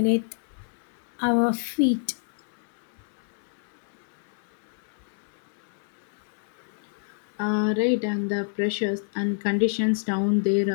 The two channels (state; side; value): silent; right; 59 dB below the other